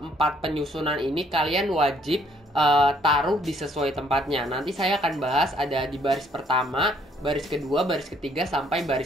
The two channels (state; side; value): normal; both; correlation 0.65